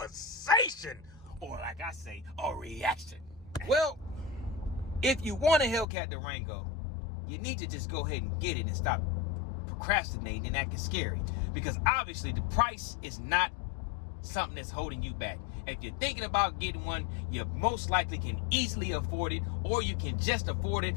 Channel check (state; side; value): drops out; right; at 5.9 s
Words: or like I say, a reaction. Well, if you want a Hellcat Durango, you need to just go ahead and get it and stop procrastinating and acting scary, because obviously the price is not something that's holding you back. If you're thinking about getting one, you most likely can easily afford it, or you can just afford it,